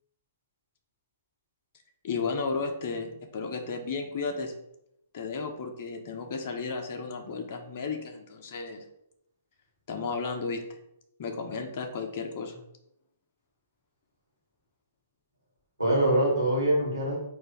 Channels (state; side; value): inverted; both; correlation -0.57